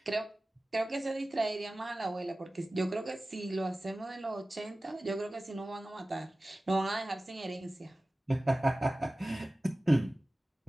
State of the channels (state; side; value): normal; both; correlation 0.97